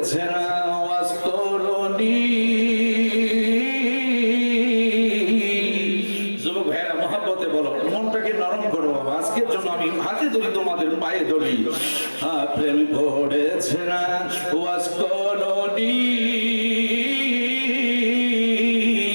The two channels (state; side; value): inverted; both; correlation -1.00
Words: না অস্করণী। যুবক ভাইরা মহব্বতে বলো, মনটাকে নরম করো বাবা, আজকের জন্য আমি হাতে ধরি তোমাদের পায়ে ধরি। প্রেম করেছে না অস্করণী,